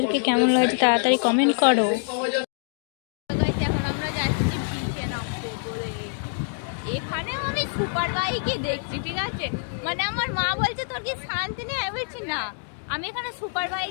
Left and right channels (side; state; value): right; silent; digital silence